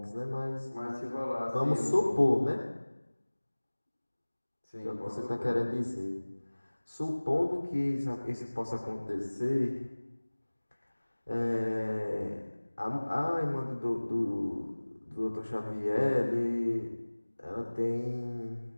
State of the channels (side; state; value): both; inverted; correlation -1.00